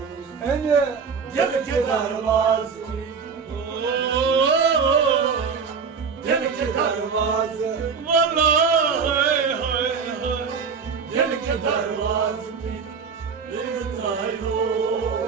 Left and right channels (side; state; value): left; quieter; 5.8 dB